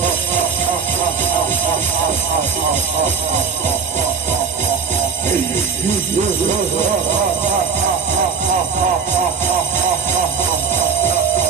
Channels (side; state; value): left; quieter; 5.8 dB